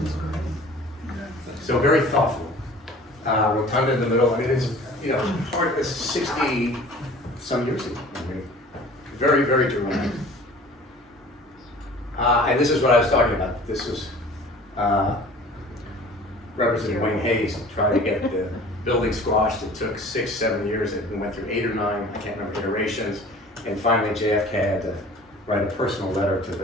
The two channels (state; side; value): normal; both; correlation 0.46